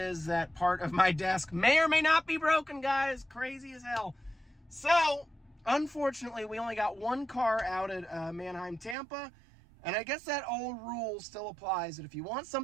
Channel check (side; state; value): left; drops out; at 9.0 s